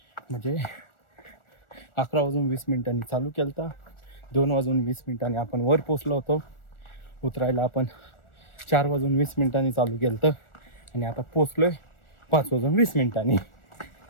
म्हणजे 11:20 चालू केलं तर 2:20 आपण वर पोचलो होतो. उतरायला आपण 4:20 चालू केलं तर, आणि आता पोचलोय 5:20.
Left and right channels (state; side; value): late; right; 1.4 ms